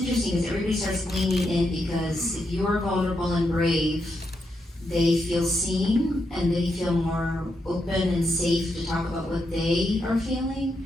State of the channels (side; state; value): both; normal; correlation 0.82